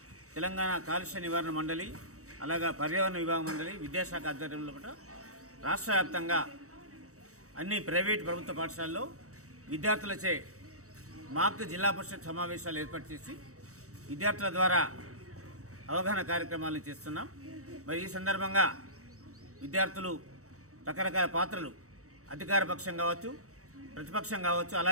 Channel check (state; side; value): late; left; 0.65 ms